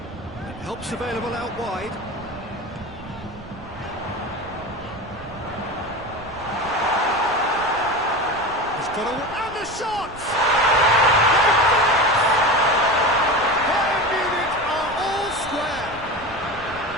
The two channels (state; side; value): noise; right; rumble, 18 dB below the sound